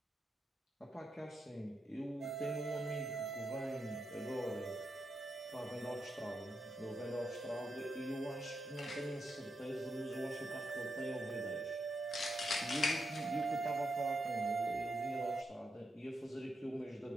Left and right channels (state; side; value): normal; both; correlation 0.84